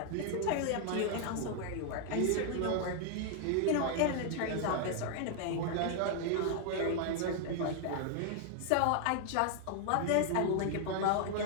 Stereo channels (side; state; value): both; different; correlation 0.00